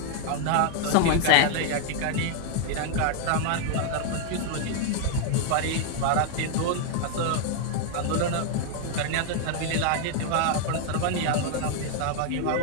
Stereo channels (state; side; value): different; both; correlation 0.00